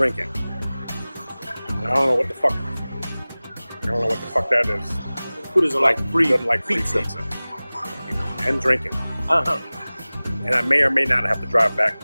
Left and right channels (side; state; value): both; inverted; correlation -0.99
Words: I don't know what the fuck. That is. Who doesn't like free Doesn't like free pizza? You know, and drinking. Uh-huh. And I may or may not have to drive back